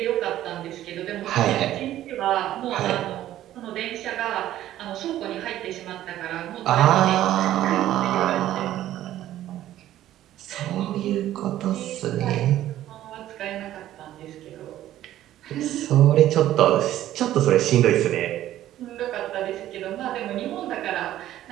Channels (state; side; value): quieter; left; 13.2 dB